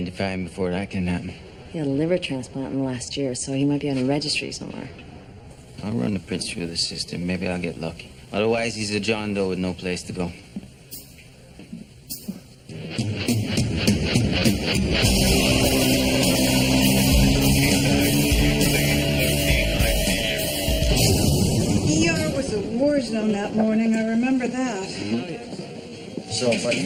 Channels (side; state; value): both; identical; correlation 1.00